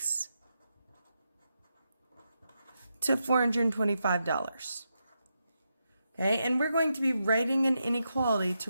to $425. Okay, and we're going to be writing an inequality to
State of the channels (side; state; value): both; inverted; correlation -0.85